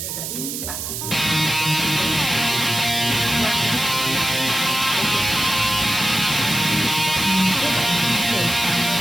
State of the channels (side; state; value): right; noise; hiss, 5 dB below the sound